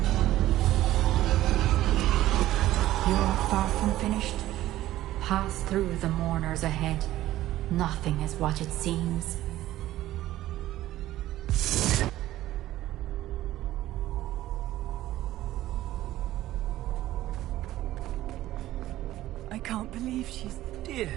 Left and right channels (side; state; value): left; quieter; 14.8 dB